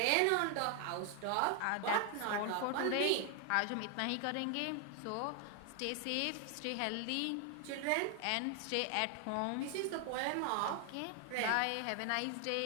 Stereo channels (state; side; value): different; both; correlation 0.00